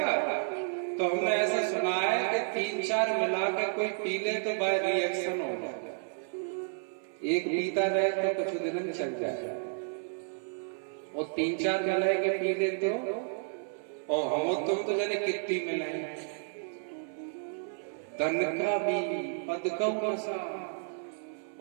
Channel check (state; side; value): silent; left; 57 dB below the other